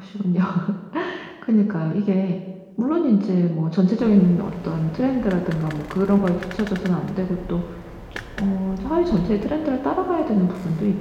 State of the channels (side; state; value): both; identical; correlation 1.00